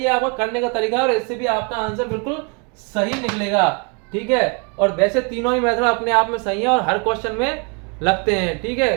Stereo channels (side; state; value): left; quieter; 33.7 dB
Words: है, आपका करने का तरीका है, और इससे भी आपका आंसर बिल्कुल सही निकलेगा, ठीक है। और वैसे तीनों ही मेथड अपने आप में सही है और हर क्वेश्चन में लगते हैं, ठीक है।